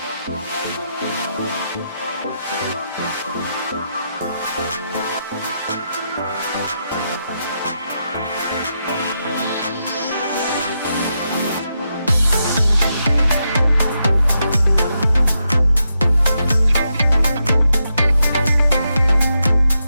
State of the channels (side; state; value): both; inverted; correlation -0.84